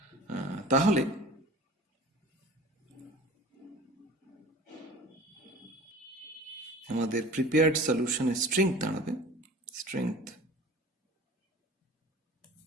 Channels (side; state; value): both; normal; correlation 0.41